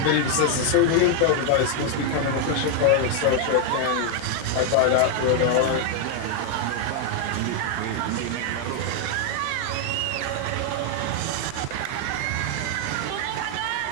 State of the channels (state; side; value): different; both; correlation 0.01